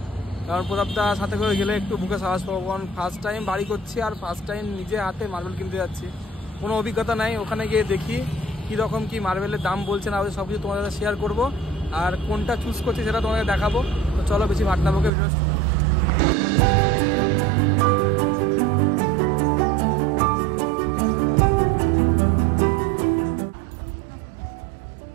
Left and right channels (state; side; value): drops out; left; at 15.1 s